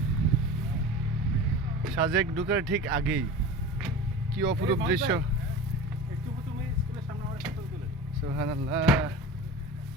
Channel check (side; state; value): both; normal; correlation 0.33